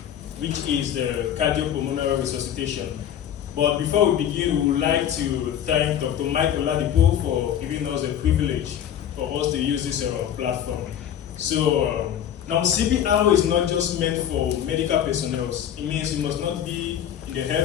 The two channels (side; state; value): right; quieter; 9.9 dB